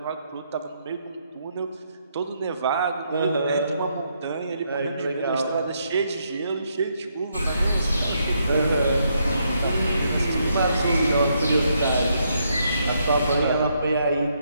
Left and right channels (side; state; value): both; inverted; correlation -0.76